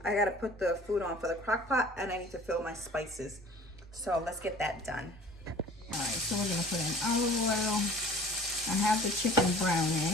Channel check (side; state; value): both; normal; correlation 0.47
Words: I gotta put the food on for the crock pot, and I need to fill my spices. So let's get that done. All right, so we're gonna put in olive oil. I have the chicken